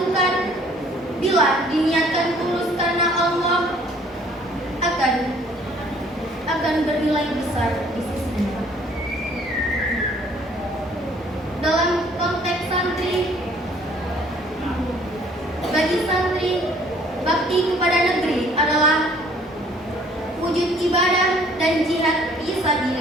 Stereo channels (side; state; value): both; normal; correlation 0.58